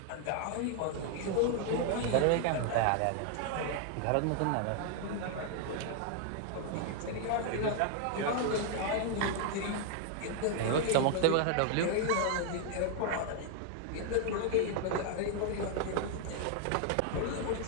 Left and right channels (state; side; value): different; both; correlation 0.00